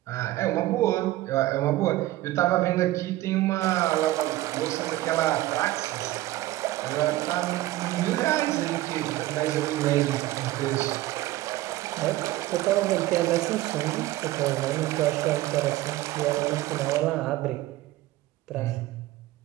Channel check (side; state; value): left; quieter; 16.5 dB